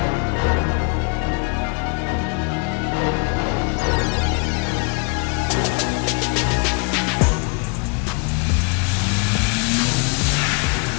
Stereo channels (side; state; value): right; quieter; 33.9 dB